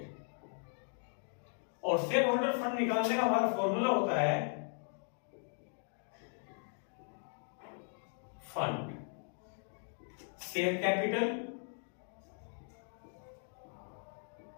और शेयर होल्डर फंड निकालने का हमारा फॉर्मूला होता है fund share capital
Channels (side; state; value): right; silent; 53 dB below the other